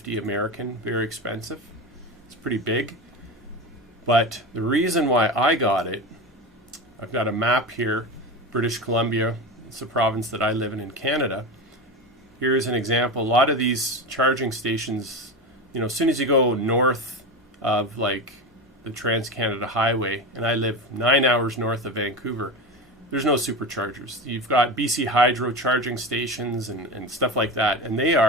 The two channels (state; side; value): normal; both; correlation 0.23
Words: American. Very expensive. It's pretty big. But the reason why I got it, I've got a map here, British Columbia. It's the province that I live in Canada. Here's an example. A lot of these charging stations, you know, as soon as you go north of like the Trans-Canada Highway, and I live 9 hours north of Vancouver, there's no superchargers. You've got BC Hydro charging stations and stuff like that, and they